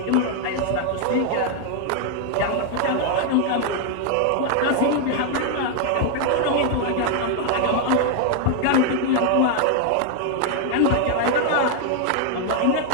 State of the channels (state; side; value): different; both; correlation 0.00